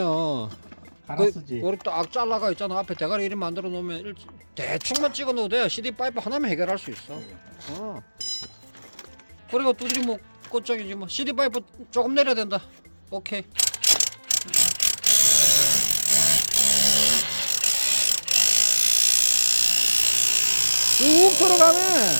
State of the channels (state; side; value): inverted; both; correlation -1.00